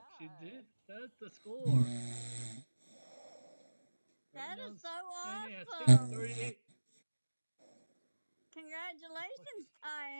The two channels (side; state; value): both; inverted; correlation -1.00